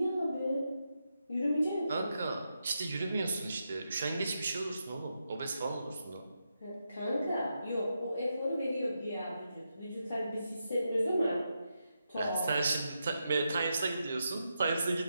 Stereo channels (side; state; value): both; inverted; correlation -0.85